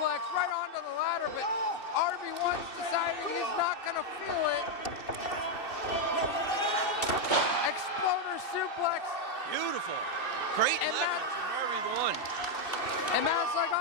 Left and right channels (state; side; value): late; right; 2.7 ms